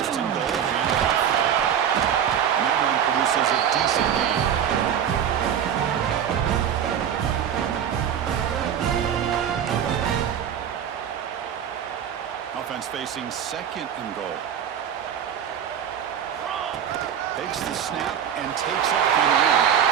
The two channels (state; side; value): quieter; left; 8.9 dB